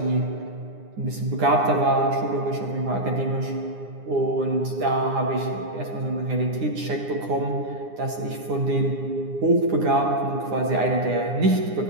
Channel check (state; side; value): late; left; 9.8 ms